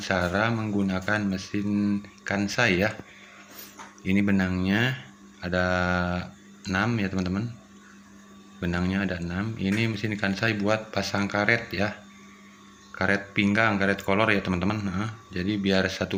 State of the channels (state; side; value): identical; both; correlation 1.00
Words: menggunakan mesin kansai ya. Ini benangnya ada 6 ya teman-teman. Benangnya ada 6. Ini mesin kansai buat pasang karet ya. Karet pinggang, karet kolor ya teman-teman. Jadi biar